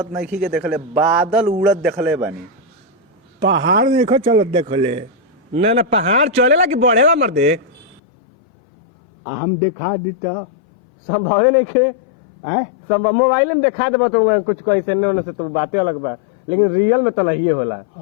नहीं के देखले, बादल उड़त देखले बानी। पहाड़ देखो चलत देखले, ना ना पहाड़ चलेला कि बढ़ेला मर्दे? हम देखा दीता संभवे नहीं खे। है संभव मोबाइल में दिखा देबा तो कुछ कैसे ने से तो बातें अलग बा, लेकिन रियल में तो नहीं होला।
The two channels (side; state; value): right; drops out; at 8.0 s